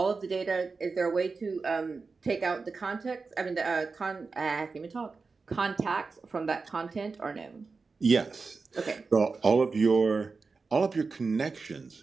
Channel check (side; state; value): left; quieter; 4.4 dB